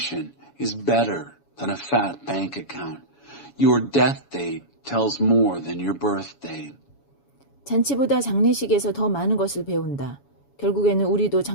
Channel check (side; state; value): right; late; 7.1 ms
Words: is better than a fat bank account. Your death date tells more than your birth date. 잔치보다 장례식에서 더 많은 것을 배운다. 결국에는 우리도